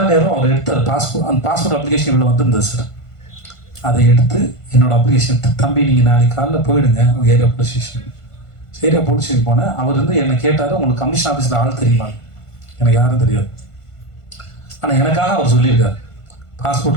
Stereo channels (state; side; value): late; right; 1.5 ms